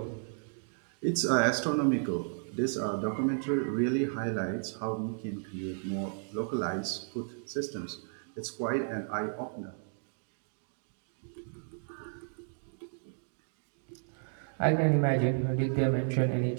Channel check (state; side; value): silent; left; digital silence